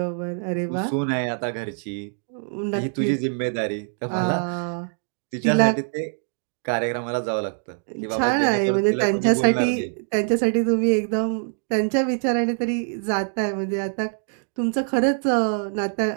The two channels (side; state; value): left; silent; 63 dB below the other